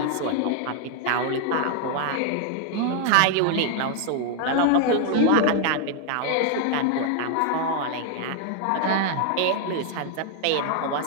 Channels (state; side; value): different; both; correlation 0.00